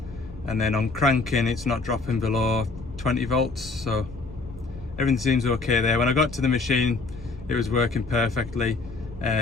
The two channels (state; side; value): quieter; right; 3.8 dB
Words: and then on cranking it's not dropping below 20 volts, so everything seems okay there. When I got to the machine it was working perfectly.